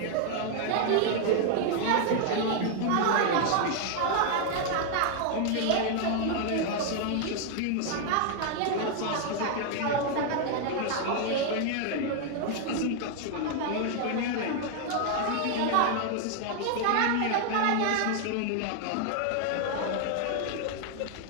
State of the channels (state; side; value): different; both; correlation 0.00